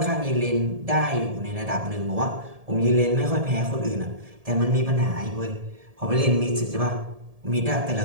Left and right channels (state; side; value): late; left; 1.7 ms